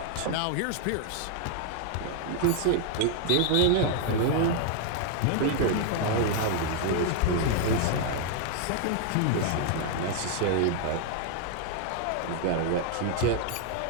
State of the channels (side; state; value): both; different; correlation 0.00